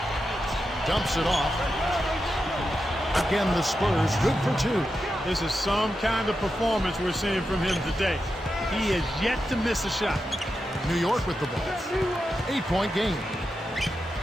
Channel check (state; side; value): normal; both; correlation 0.88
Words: Dumps it off. Again, the Spurs good for 2. This is some kind of performance we're seeing from him today. He is yet to miss a shot. New York with the ball. 8-point game.